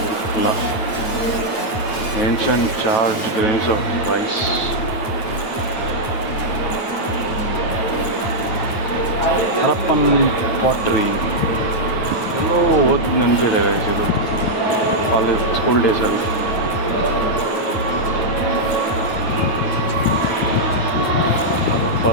ಇಲ್ಲ. Ancient charred grains of rice. Harappan pottery ಎಲ್ಲೋ ಓದಿ ನೆನಪಿದೆ ಇದು college school ಡೇಸಲ್ಲಿ.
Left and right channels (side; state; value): right; late; 9.1 ms